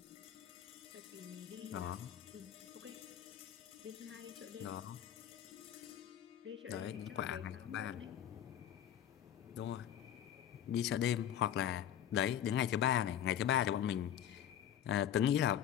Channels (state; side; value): quieter; right; 10.3 dB